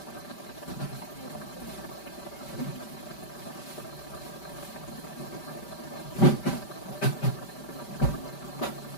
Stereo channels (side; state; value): right; late; 5.1 ms